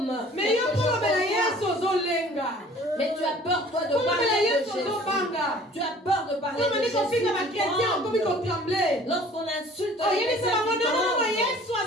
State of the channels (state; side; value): normal; both; correlation 0.50